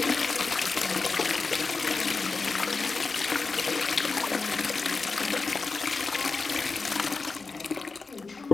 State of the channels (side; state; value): right; quieter; 4.2 dB